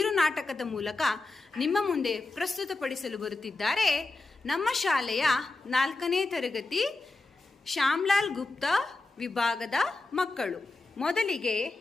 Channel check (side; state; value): right; quieter; 3.3 dB